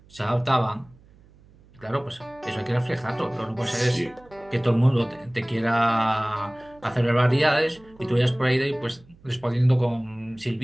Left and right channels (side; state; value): right; noise; hum, 27 dB below the sound